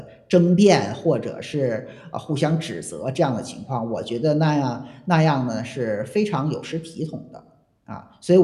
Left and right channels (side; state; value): both; identical; correlation 1.00